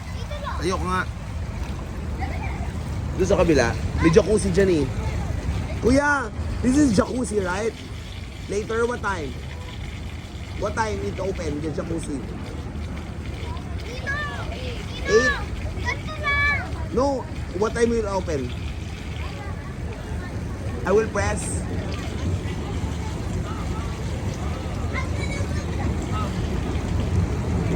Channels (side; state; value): both; identical; correlation 1.00